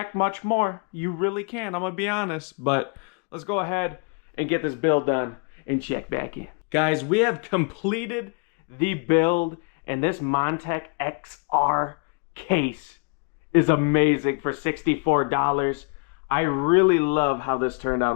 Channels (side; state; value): right; quieter; 34.7 dB